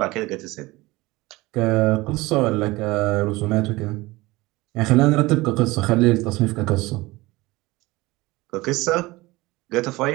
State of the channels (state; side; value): quieter; left; 20.8 dB